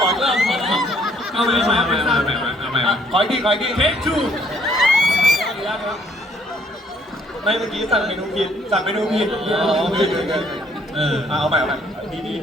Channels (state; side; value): normal; both; correlation 0.65